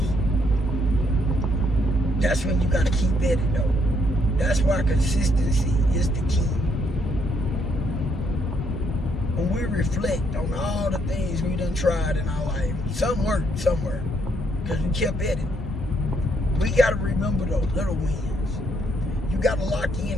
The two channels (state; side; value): normal; both; correlation 0.72